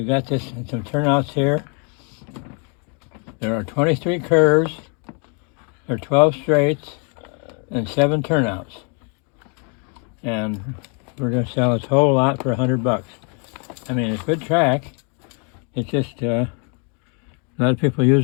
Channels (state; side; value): quieter; right; 37.8 dB